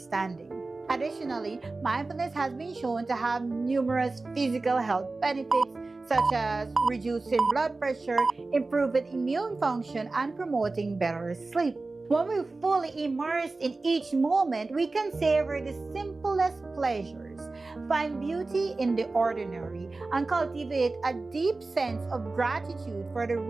Additionally, mindfulness has been shown to have numerous physical health benefits such as reducing blood pressure, improving immune function, and promoting better sleep. When we're fully immersed in each moment, we can savor the simplest pleasures, find beauty in the ordinary, and cultivate a deep sense of gratitude for the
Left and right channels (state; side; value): quieter; left; 3.5 dB